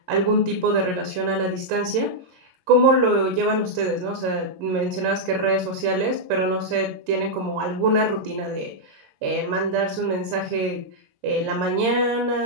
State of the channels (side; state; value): left; late; 22 ms